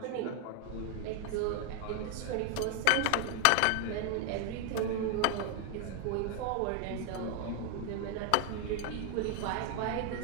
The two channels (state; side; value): different; both; correlation 0.01